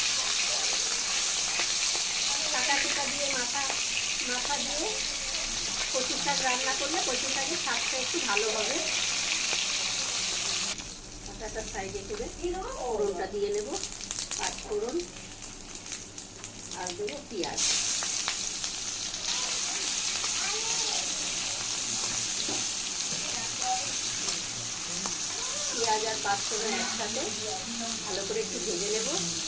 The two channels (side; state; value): both; identical; correlation 1.00